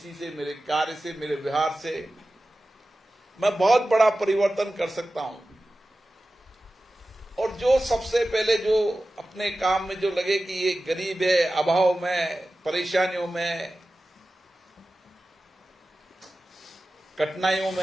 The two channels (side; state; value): both; normal; correlation 0.95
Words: से, मेरे कार्य से, मेरे व्यवहार से मैं बहुत बड़ा परिवर्तन कर सकता हूं। और जो सबसे पहले जो अपने काम में जो लगे कि ये गरीब है, अभाव में, परेशानियों में, कठिनाइयों